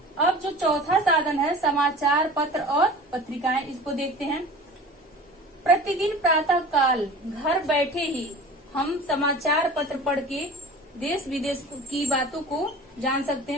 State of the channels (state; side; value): normal; both; correlation 0.39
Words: अब जो चौथा साधन है समाचार पत्र और पत्रिकाएं, इसको देखते हैं। प्रतिदिन प्रातः काल घर बैठे ही हम समाचार पत्र पढ़ के देश विदेश की बातों को जान सकते